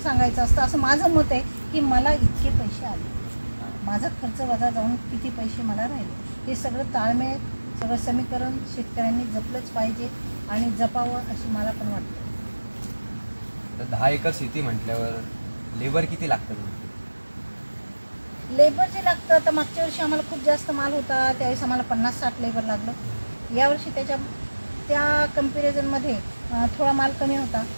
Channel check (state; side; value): inverted; both; correlation -1.00